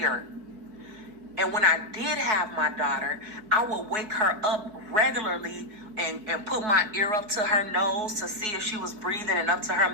And when I did have my daughter, I would wake her up regularly and put my ear up to her nose to see if she was breathing and up to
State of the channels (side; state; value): left; late; 4.7 ms